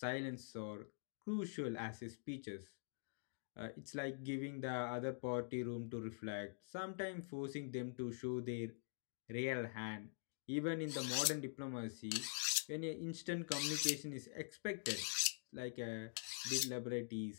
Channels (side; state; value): right; silent; digital silence